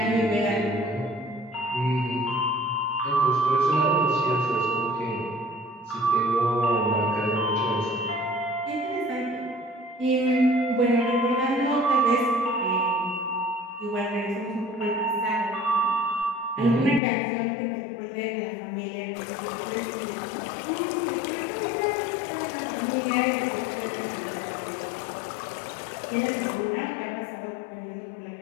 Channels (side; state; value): right; drops out; at 17.0 s